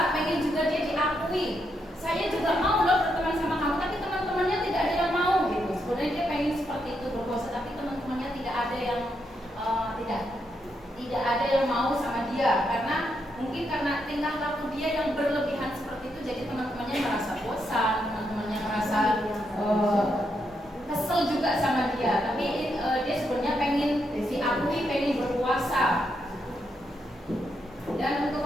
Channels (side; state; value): both; normal; correlation 0.80